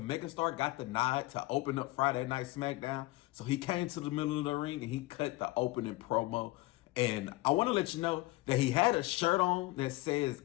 megastar, got the nod to open up Friday Night SmackDown. So he came to the middle of the ring and he cut the opening promo. And I want to let you know that he had a shirt on that says,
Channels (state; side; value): quieter; right; 20.0 dB